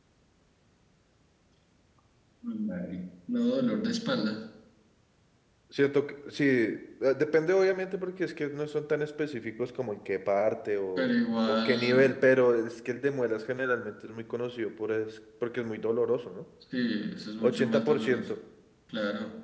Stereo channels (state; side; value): identical; both; correlation 1.00